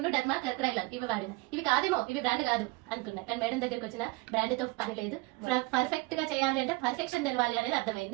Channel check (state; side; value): quieter; left; 23.8 dB